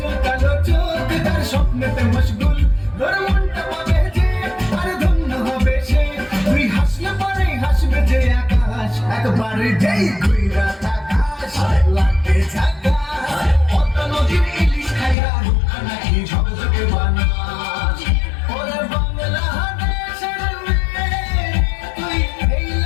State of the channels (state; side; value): drops out; right; at 15.2 s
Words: কালো চোখ তার স্বপ্নেতে মশগুল। তোর মনটা পাবে যে আর ধন্য হবে সে, তুই হাসলে পরে হাসবে যে আকাশ, একবার যেই ঘুইরা তাকাস লাগে ঝাকাস। পদ্মা নদীর ইলিশ খাইয়া রূপা নাকি ঝকঝকে বানাস। ওরে বাংলাদেশের মেয়ে তুই এই